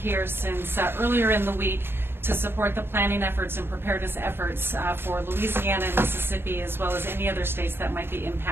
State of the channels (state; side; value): late; left; 0.11 ms